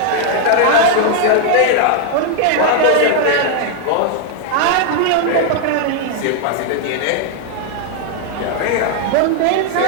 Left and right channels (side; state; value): both; different; correlation 0.00